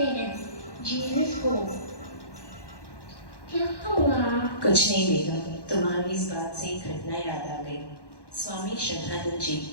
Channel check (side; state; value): right; late; 1.1 ms